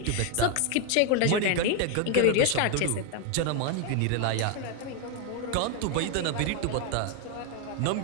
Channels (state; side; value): different; both; correlation 0.01